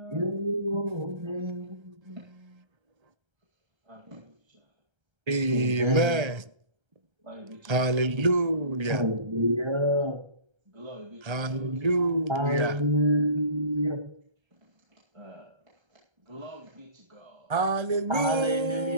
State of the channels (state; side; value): late; left; 1.3 ms